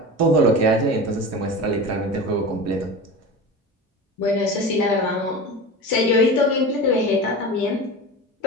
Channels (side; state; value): both; normal; correlation 0.30